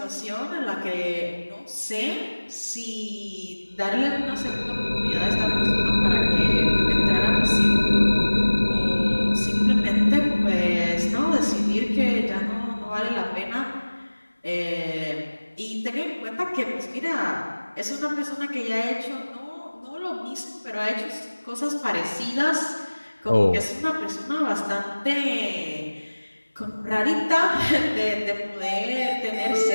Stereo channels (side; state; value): both; inverted; correlation -1.00